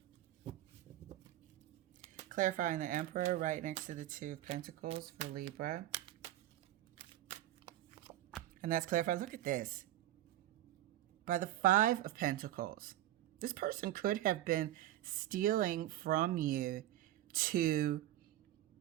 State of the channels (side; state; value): left; quieter; 14.0 dB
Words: Clarifying the Emperor right next to the Two of Pentacles for Libra. And that's clarified. Look at this. By the Five of Pentacles. This person could have been stealing from you to,